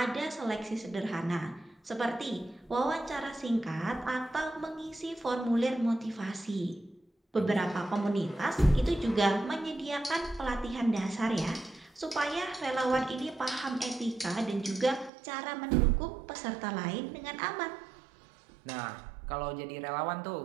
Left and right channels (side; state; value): left; drops out; at 15.1 s